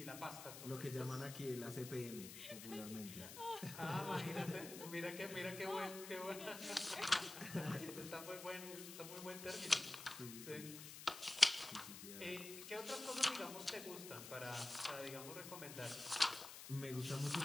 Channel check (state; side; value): noise; left; hiss, 10 dB below the sound